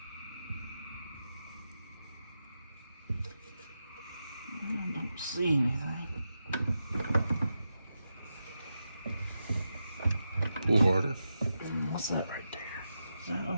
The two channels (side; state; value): both; inverted; correlation -0.89